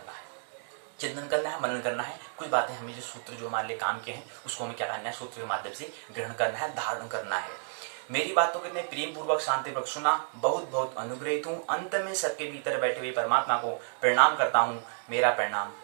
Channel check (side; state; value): left; silent; digital silence